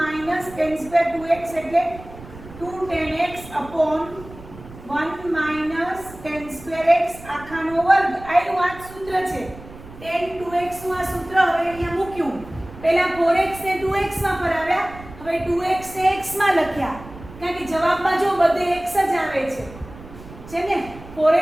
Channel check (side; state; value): right; noise; rumble, 17 dB below the sound